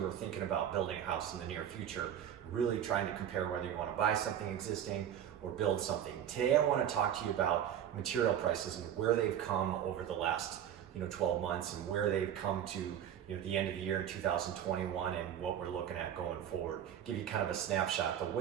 are thinking about building a house in the near future, really trying to compare whether you want to buy something existing or build something. Today I want to talk to you about material prices and where they've come over the last 12 months and where they've come to the end of the year in 2021 and what we're looking at going forward. Give you kind of a snapshot. The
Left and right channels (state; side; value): quieter; left; 9.9 dB